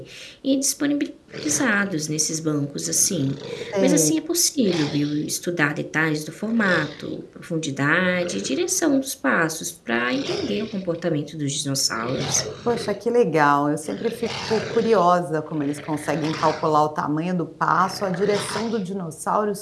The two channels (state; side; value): identical; both; correlation 1.00